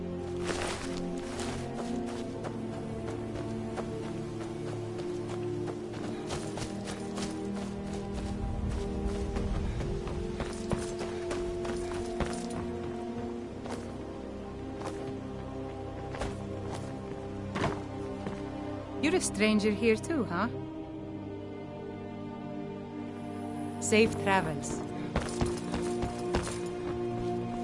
You're a stranger here too, huh? Safe travels.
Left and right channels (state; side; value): identical; both; correlation 1.00